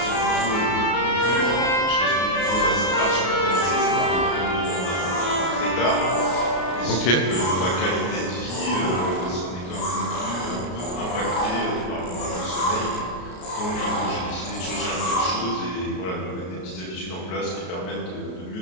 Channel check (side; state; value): right; late; 33 ms